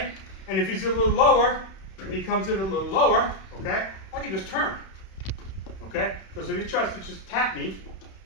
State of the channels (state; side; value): late; right; 31 ms